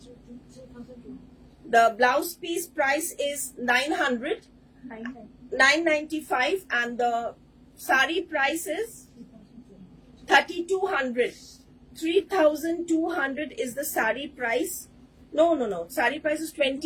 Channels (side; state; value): both; identical; correlation 1.00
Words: The blouse piece price is 995 and the sari price is 3,200. 3,200 is the sari price. No. Sari price is